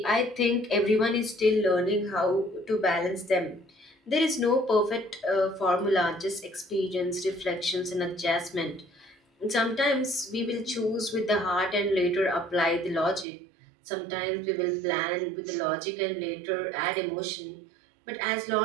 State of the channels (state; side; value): drops out; left; at 13.2 s